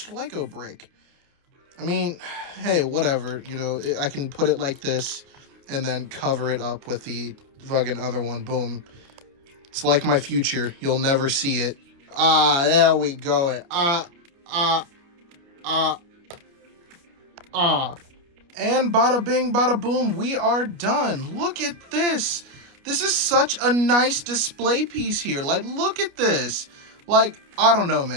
LEGO brick. I mean, hey, whatever. You know, I can put it like this and then cover it up with the fucking other one. Boom. It's like my future. You'll never see it. Ah, there we go. And bada bing, bada boom, we are done. Look at this. This is such a nice display piece here. Like, look at this. Like, I don't know,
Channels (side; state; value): left; late; 29 ms